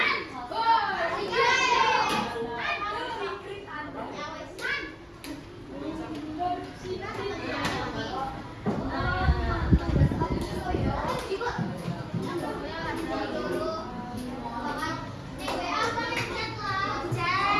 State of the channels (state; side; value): identical; both; correlation 1.00